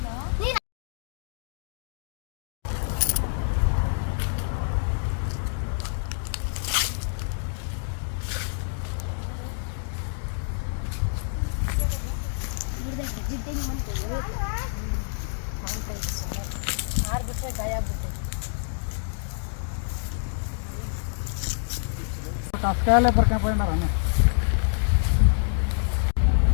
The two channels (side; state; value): right; silent; digital silence